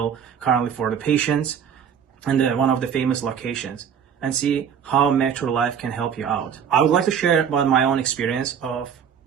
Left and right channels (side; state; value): left; quieter; 7.9 dB